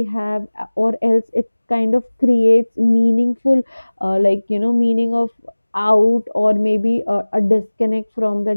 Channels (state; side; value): inverted; both; correlation -1.00